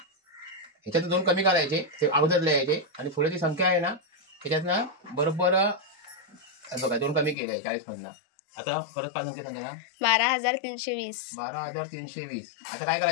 ह्याच्यात 2 कमी करायचे, ते अगोदर लिहायचे आणि पुढे जी संख्या आहे ना त्याच्यात ना बरोबर बघा 2 कमी केले 40 मधनं. आता परत काय संख्या सांगा ना. 12,320. 12,320. आता काय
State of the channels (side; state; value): right; drops out; at 7.4 s